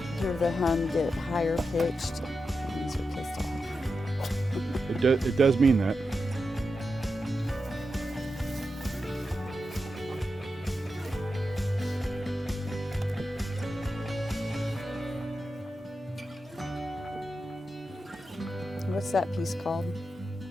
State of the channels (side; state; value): both; normal; correlation 0.89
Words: Hear the hum get higher pitched. These are pissed off. It does mean that. What's that piece called?